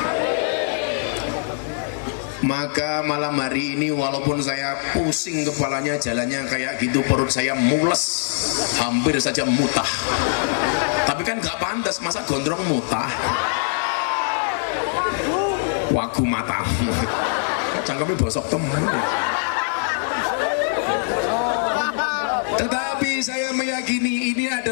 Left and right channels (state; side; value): silent; right; 64 dB below the other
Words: Maka malam hari ini walaupun saya pusing kepalanya, jalannya kayak gitu, perut saya mules, hampir saja mutah. Tapi kan gak pantas, masa gondrong mutah. Wagu mata, cangkemnya bosok temen. Tetapi saya meyakini ini